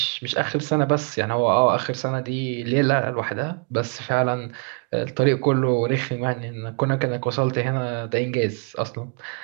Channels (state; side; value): quieter; left; 36.8 dB